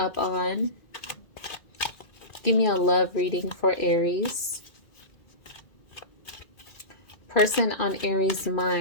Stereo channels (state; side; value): late; right; 2.4 ms